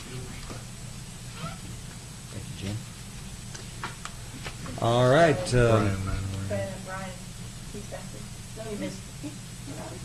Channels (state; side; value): identical; both; correlation 1.00